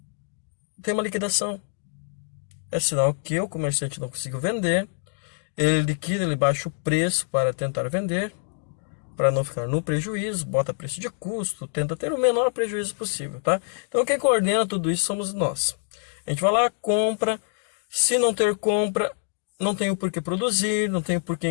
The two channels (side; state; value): right; silent; 61 dB below the other